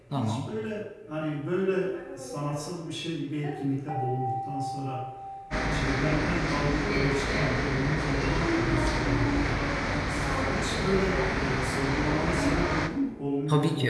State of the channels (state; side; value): identical; both; correlation 1.00